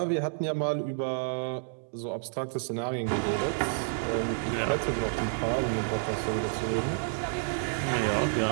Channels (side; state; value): left; silent; 58 dB below the other